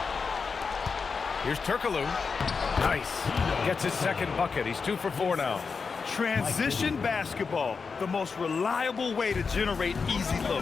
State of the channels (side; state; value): right; quieter; 5.2 dB